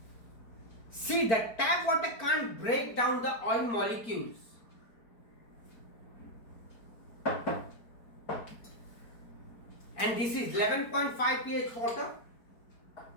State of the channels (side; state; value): right; late; 4.4 ms